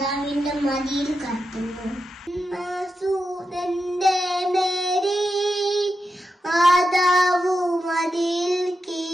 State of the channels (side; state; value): both; normal; correlation 0.88